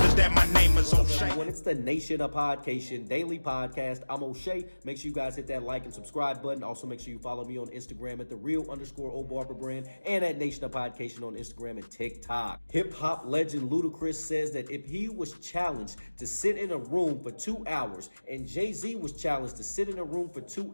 that my name is O'Shea. When it's the Nation of Podcation daily podcast, I'm O'Shea. Make sure you guys hit that like and subscribe button. Also, make sure you follow me on Instagram at @thereal_OBarberbrand and at Nation of Podcation on Instagram and TikTok. Hip hop legend Ludacris says that if he was challenged to sit in a room for 2 hours and Jay-Z was challenged to sit in a room for 2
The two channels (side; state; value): both; inverted; correlation -1.00